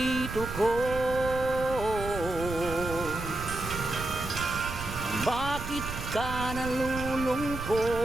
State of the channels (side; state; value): right; noise; rumble, 8 dB below the sound